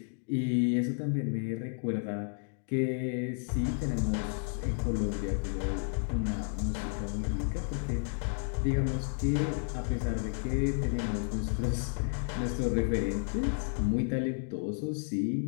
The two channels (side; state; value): right; silent; 56 dB below the other